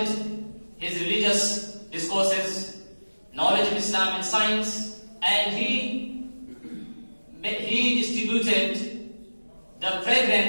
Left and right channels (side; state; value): both; inverted; correlation -1.00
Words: his religious discourses, knowledge of Islam and science, and he distributed the